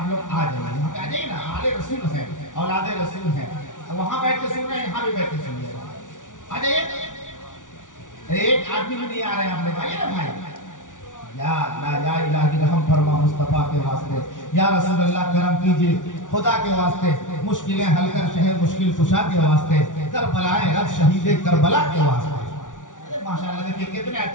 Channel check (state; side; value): late; right; 0.87 ms